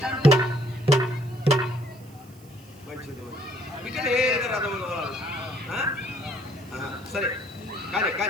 మంచిది ఇక్కడ ఏదో రథం తోలాలి. సరే కానీ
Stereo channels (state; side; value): noise; right; hiss, 26 dB below the sound